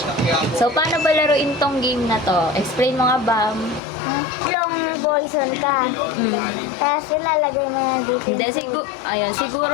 So, paano ba laruin tong game na to? Explain mo nga, Bam. Long poison ka. Tapos ilalagay mo na dito. Hindi,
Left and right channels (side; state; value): right; drops out; at 3.8 s